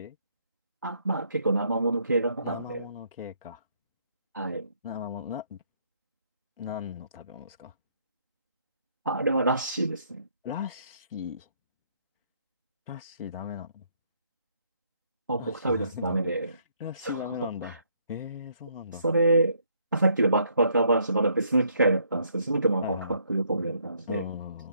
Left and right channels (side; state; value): both; inverted; correlation -0.69